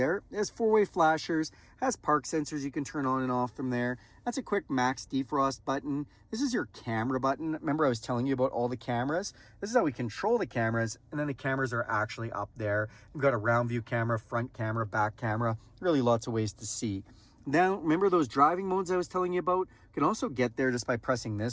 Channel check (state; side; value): identical; both; correlation 1.00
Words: It has 4-way flashers, has park sensors you can turn on and off from there. That's a quick max defrost button. This is your camera button. Remember I was telling you about all the cameras? This is how we control the cameras, and then the cameras are actually up there. We've got a round view camera, front camera, back camera, really lots of ways to see. Now, remember those driving modes I was telling you about? You can also get there just by pressing